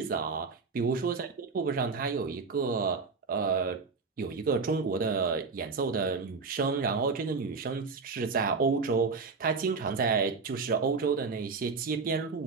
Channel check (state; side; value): quieter; left; 4.6 dB